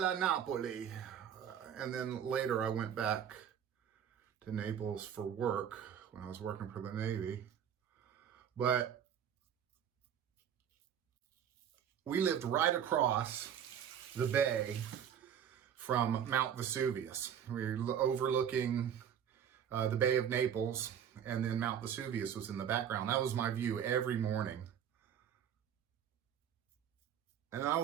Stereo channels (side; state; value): left; quieter; 8.8 dB